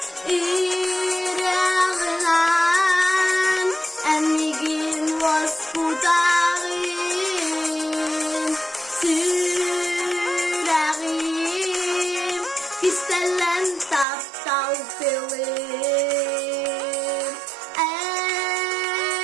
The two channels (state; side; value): drops out; left; at 14.1 s